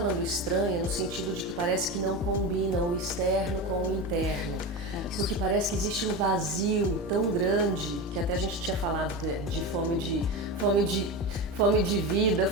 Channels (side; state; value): both; normal; correlation 0.22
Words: estranha no sentido de que parece que não combina o externo com o interno. Porque parece que existe um vazio tão grande, que até a gente tinha falado de fome de vida,